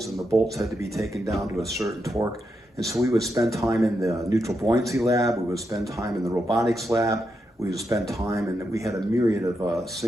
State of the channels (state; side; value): normal; both; correlation 0.84